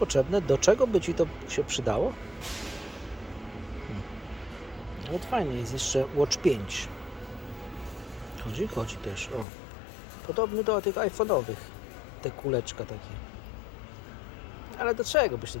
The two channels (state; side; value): drops out; right; at 9.5 s